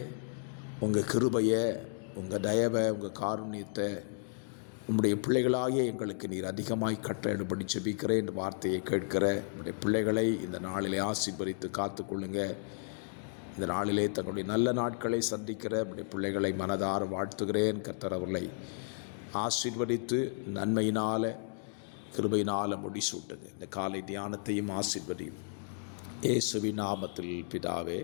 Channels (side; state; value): right; silent; digital silence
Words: உங்கள் கிருபையை, உங்கள் தயவை, உங்கள் காருண்யத்தை உங்களுடைய பிள்ளைகளாகிய எங்களுக்கு நீர் அதிகமாய் கட்டளையிடும்படி ஜெபிக்கிறேன். இந்த வார்த்தையை கேட்கிற உங்களுடைய பிள்ளைகளை இந்த நாளிலே ஆசீர்வதித்து காத்துக்கொள்ளுங்க. இந்த நாளிலே தங்களுடைய நல்ல நாட்களை சந்திக்கிற உங்களுடைய பிள்ளைகளை மனதார வாழ்த்துகிறேன். கர்த்தர் அவர்களை ஆசீர்வதித்து நன்மையினால் கிருபையினால் முடிசூட்டுங்க. இந்த காலை தியானத்தையும் ஆசீர்வதியும் இயேசுவின் நாமத்தில் பிதாவே,